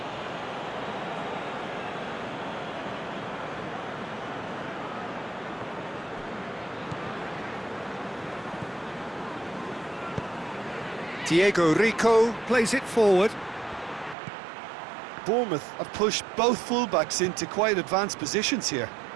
Diego Rico plays it forward. Bournemouth have pushed both fullbacks into quite advanced positions here.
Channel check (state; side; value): drops out; left; at 14.2 s